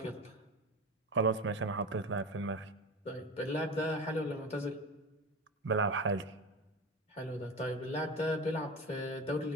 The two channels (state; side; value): normal; both; correlation 0.27